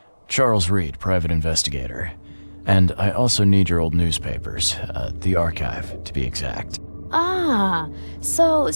Charles Reed, private investigator. And I also need your old newspapers, the archive, to be exact. Ah, so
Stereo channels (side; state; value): both; inverted; correlation -1.00